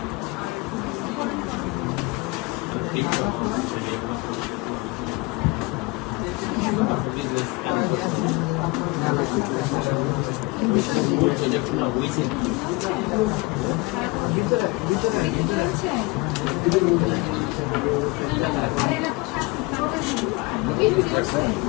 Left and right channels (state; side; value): quieter; right; 25.0 dB